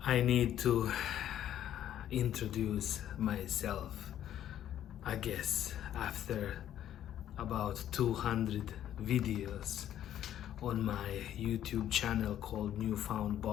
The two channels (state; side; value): quieter; right; 11.2 dB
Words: I need to introduce myself, I guess, after about 200 videos on my YouTube channel called